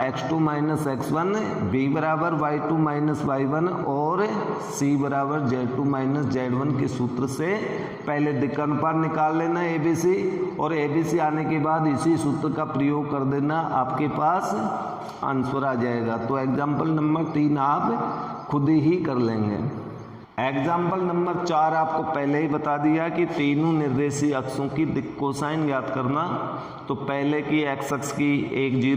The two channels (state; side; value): identical; both; correlation 1.00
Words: x2 - x1, B बराबर y2 - y1 और C बराबर z2 - z1 के सूत्र से पहले दिक् अनुपात निकाल लेना ABC, और ABC आने के बाद इसी सूत्र का प्रयोग कर देना, आपके पास आंसर आ जाएगा। तो एग्जाम्पल नंबर 3 आप खुद ही कर लेंगे। एग्जाम्पल नंबर 4 आपको पहले ही बता दिया कि तीनों निर्देशीय अक्षों की दिक् कोसाइन ज्ञात करना। तो पहले की x अक्ष की 1